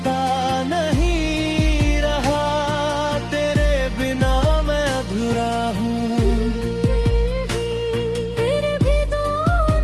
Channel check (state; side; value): identical; both; correlation 1.00